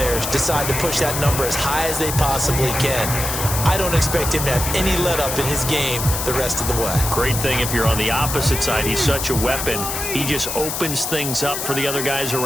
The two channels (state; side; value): noise; left; hiss, 4 dB below the sound